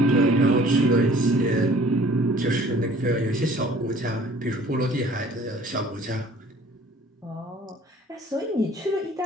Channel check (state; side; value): normal; both; correlation 0.52